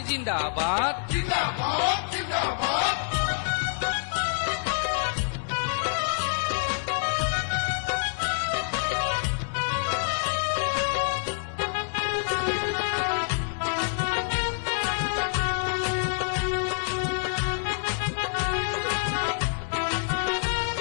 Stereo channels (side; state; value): right; silent; digital silence